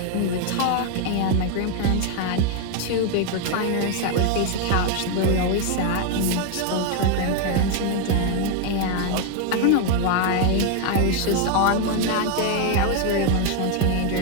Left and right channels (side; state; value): both; different; correlation 0.01